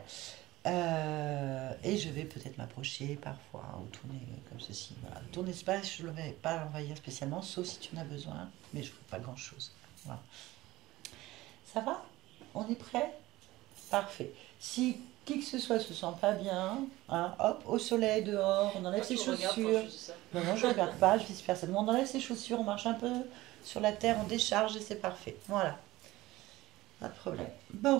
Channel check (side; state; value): left; quieter; 18.0 dB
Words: Et je vais peut-être m'approcher parfois ou tourner comme ceci. Voilà. Ton espace, je ne vais pas l'envahir spécialement, sauf si tu en as besoin, mais je ne ferai pas grand-chose. Voilà. Ça va? On est prêt? Parfait. Si qui que ce soit se sent pas bien, hein, hop, au soleil, dehors, on enlève ses chaussures. Non, je ne regarde pas, je vice personne. On enlève ses chaussures, on marche un peu sur la terre, on décharge et c'est parfait. Voilà. Pas de problème.